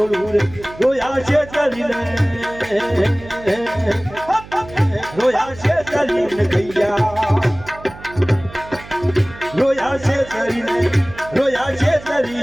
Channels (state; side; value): noise; right; hum, 17 dB below the sound